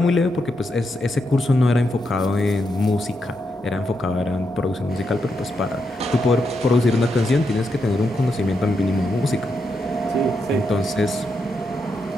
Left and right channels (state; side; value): normal; both; correlation 0.83